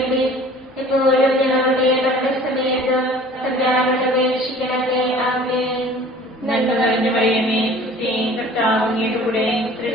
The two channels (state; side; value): normal; both; correlation 0.47